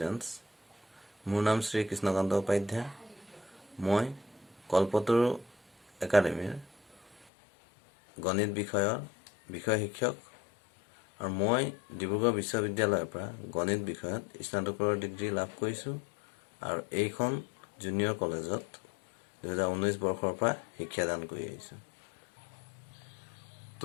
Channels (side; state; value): right; drops out; at 7.2 s